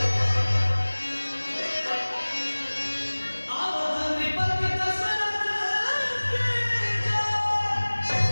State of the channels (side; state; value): both; inverted; correlation -1.00